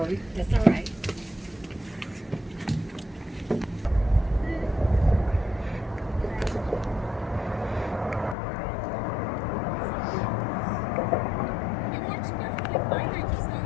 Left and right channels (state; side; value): drops out; right; at 8.3 s